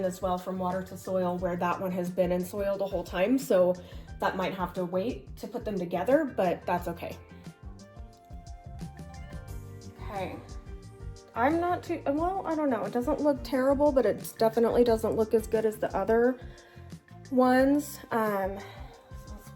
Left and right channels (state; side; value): identical; both; correlation 1.00